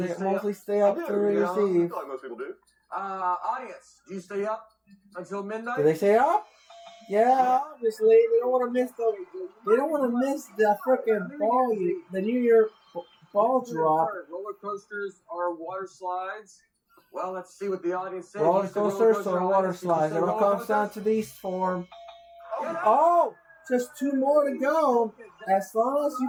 they stay mostly up? stay I up do, to you know, I receive. feel like most people do. Audience, do you stay up until midnight? Do they stay up? Yeah, obviously. They don't want to miss the freaking ball, the New Year ball drop. Roller coasters or water slides? Well, let's see what the audience says. Roller You said roller coasters coaster, or water audience. Did you slides. say It all roller comes down coasters? to these form. Get up. Oh, just 2 more to go. As long as you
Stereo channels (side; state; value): both; identical; correlation 1.00